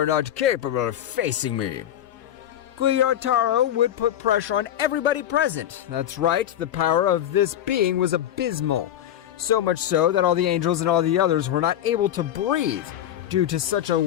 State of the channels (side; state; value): right; quieter; 11.3 dB